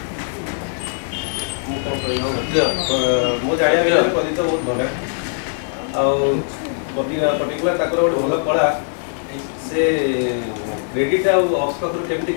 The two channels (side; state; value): right; silent; digital silence